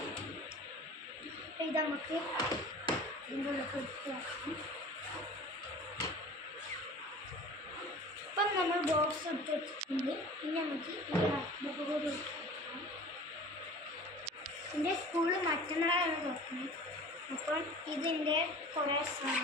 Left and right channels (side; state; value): both; normal; correlation 0.42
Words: ഇത് നമുക്ക് ഇതിൻ്റെ ഉള്ളിൽ എടുത്ത് വെക്കാം. അപ്പം നമ്മൾ ബോക്സ് എടുത്ത് വെച്ചിട്ടുണ്ട്. പിന്നെ നമുക്ക് ബുക്ക് കൂടി എടുക്കാം. എൻ്റെ സ്കൂളിൽ മറ്റന്നാളാണ് തുറക്കുന്നത്. അപ്പോൾ ഇതിൻ്റെ കുറേ